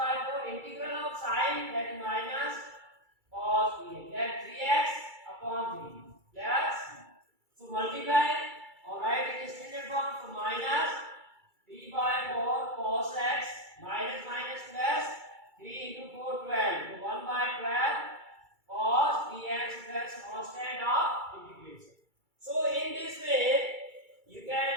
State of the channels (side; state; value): left; late; 2.3 ms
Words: 4 integral of sin, that is minus cos 3x, that 3x upon 3 plus. So multiply or write in standard form. So minus 3 by 4 cos x minus minus plus 3 into 4 12. So 1 by 12 cos 3x plus constant of integration. So in this way you